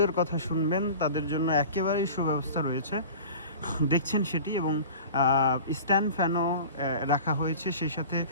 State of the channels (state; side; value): inverted; both; correlation -0.39